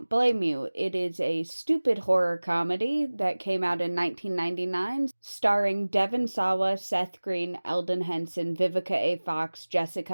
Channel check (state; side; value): inverted; both; correlation -1.00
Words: blame you. It is a stupid horror comedy that came out in 1999, starring Devon Sawa, Seth Green, Eldon Henson, Vivica A. Fox,